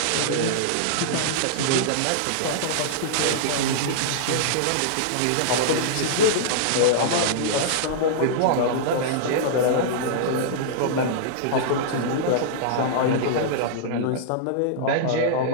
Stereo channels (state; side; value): different; both; correlation -0.02